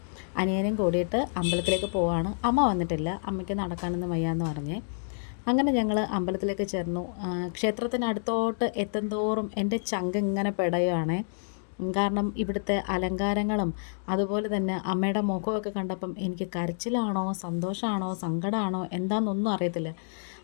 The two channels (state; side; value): silent; right; digital silence